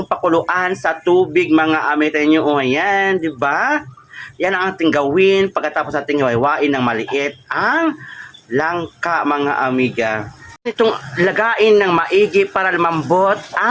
pakuluan sa tubig mga amiga niyo. O yan, di ba? Yan ang ating gawin pagkatapos natin iwain ng maliit ang langka mga amiga. Itong lagain ng maigi para lumambot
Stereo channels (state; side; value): identical; both; correlation 1.00